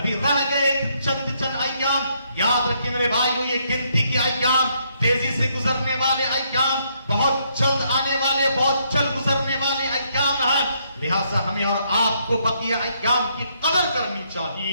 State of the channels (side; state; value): both; inverted; correlation -0.73